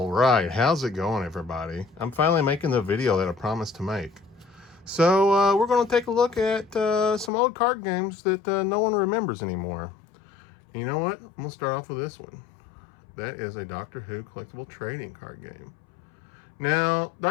right, how's it going, everybody? I'm finally making the video that I promised to make. So we're going to take a look at some old card games that no one remembers anymore. And you know what? I'm going to start off with this one. That is a Doctor Who collectible trading card game. Now,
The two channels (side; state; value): right; drops out; at 7.3 s